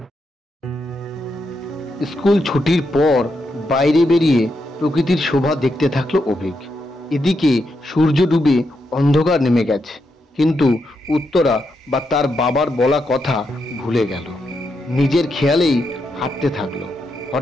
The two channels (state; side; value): normal; both; correlation 0.82